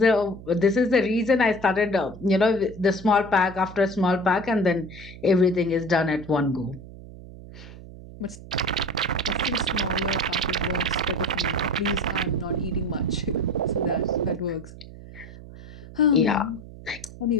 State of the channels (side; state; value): right; noise; hum, 16 dB below the sound